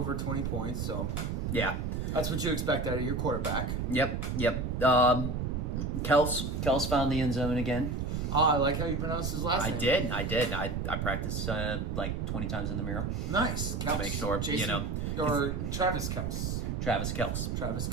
20 points. So yeah, that's what you expect out of your quarterback. Yep. Kels found the end zone again. Oh, I like how you pronounced his last name. I did. I practiced like 20 times in the mirror. Nice. Kels. To make sure, Or Travis Kels. Travis Kels.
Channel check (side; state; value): right; noise; rumble, 1 dB below the sound